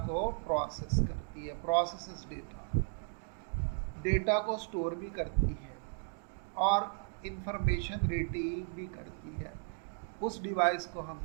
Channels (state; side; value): silent; left; 54 dB below the other